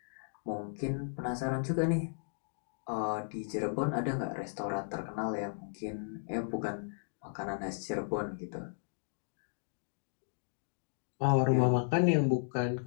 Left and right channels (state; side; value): silent; right; digital silence